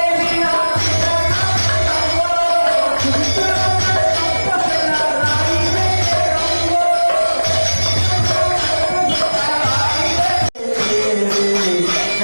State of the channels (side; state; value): both; inverted; correlation -1.00